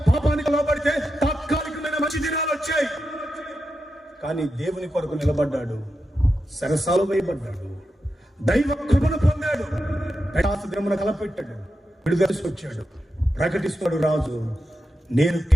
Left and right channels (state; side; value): normal; both; correlation 0.88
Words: పాపానికో లోపడితే తాత్కాలికమైన మంచి దినాలు వచ్చాయి. కానీ దేవుని కొరకు నిలబడ్డాడు, సరసాలు వేయబడ్డాడు, దైవ కృపను పొందాడు, దినమున కలపెట్టాడు, విడుదల వచ్చాడు. ప్రకటిస్తాడు రాజు, నేను